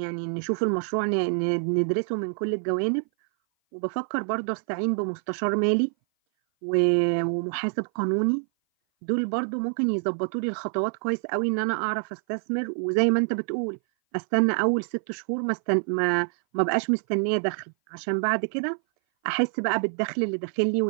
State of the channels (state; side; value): silent; left; 57 dB below the other